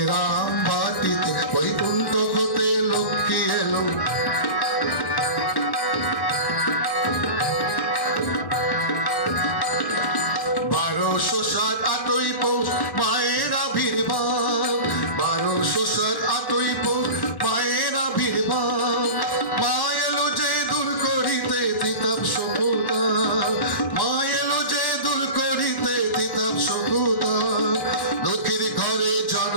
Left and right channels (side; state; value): right; late; 1.1 ms